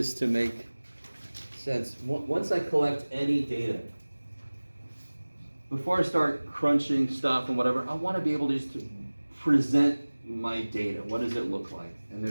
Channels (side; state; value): both; inverted; correlation -1.00